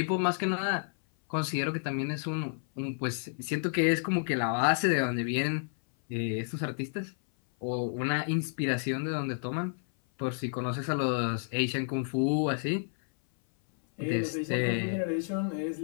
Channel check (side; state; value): right; silent; 57 dB below the other